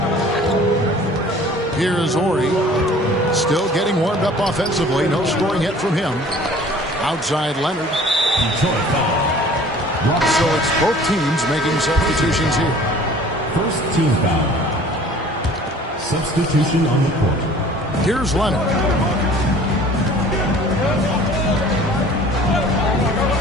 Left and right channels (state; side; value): normal; both; correlation 0.49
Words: Here's Ori. Still getting warmed up offensively. No scoring yet from him. Outside Leonard. So it's both teams making substitutions here. First team foul. Substitution on the court. Here's Leonard.